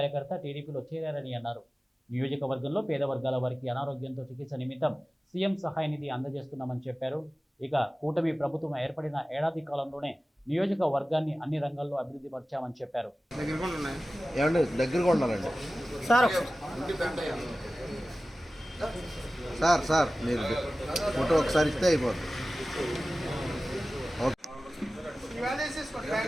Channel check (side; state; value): both; normal; correlation 0.96